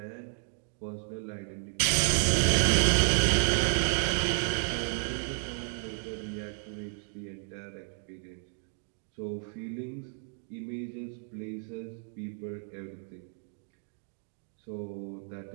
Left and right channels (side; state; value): left; silent; 56 dB below the other